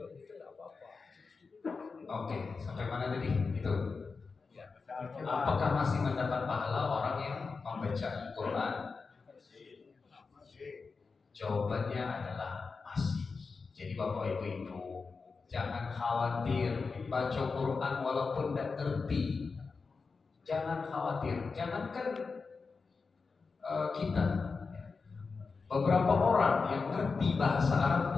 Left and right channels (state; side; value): quieter; right; 4.6 dB